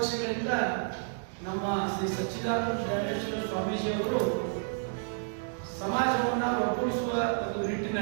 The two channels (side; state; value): left; silent; digital silence